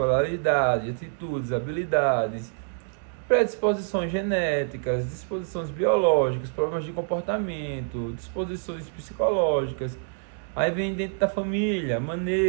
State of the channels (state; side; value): silent; left; digital silence